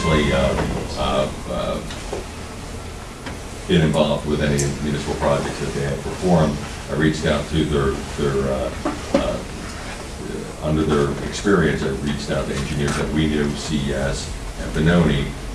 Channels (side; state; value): both; identical; correlation 1.00